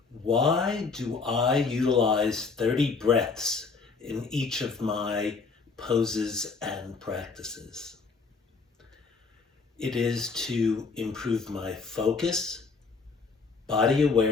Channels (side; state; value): right; quieter; 4.6 dB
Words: Why do I utilize 30 breaths in each of my poses and practices? It is to improve my focus, body